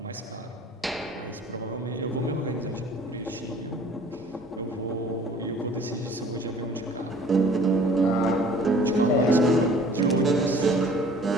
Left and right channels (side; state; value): both; normal; correlation 0.51